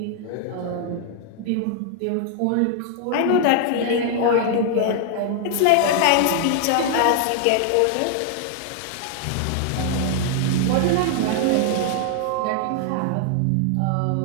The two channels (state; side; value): different; both; correlation 0.00